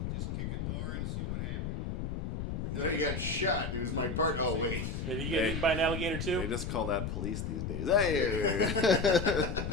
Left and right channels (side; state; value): left; noise; rumble, 3 dB below the sound